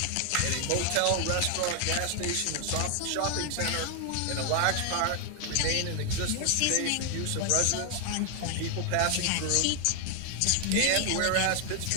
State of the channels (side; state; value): both; different; correlation 0.00